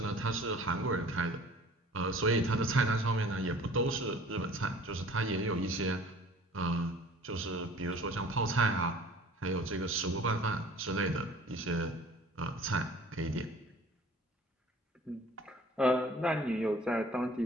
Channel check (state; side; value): normal; both; correlation 0.48